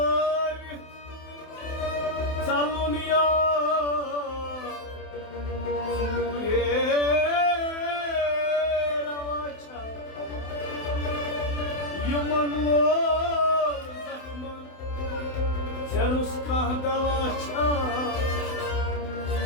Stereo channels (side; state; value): right; late; 27 ms